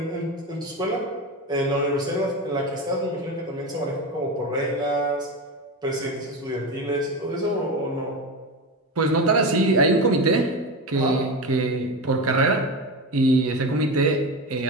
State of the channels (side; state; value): both; normal; correlation 0.22